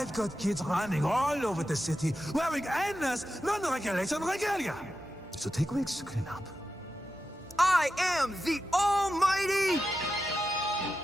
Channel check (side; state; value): both; normal; correlation 0.90